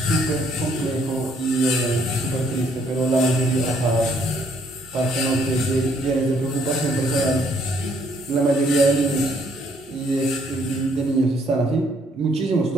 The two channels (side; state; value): both; normal; correlation 0.67